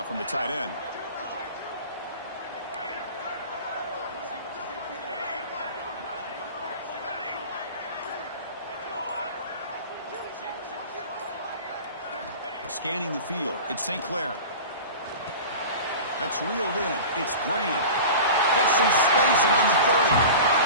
from the tight end. Scanning the field. It's St. Clair. That's reeled in. It's Graham. Hits some space around the 30.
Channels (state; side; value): inverted; both; correlation -0.35